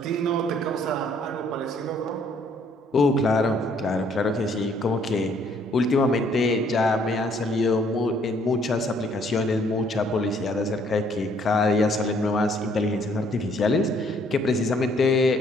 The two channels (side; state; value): both; normal; correlation 0.64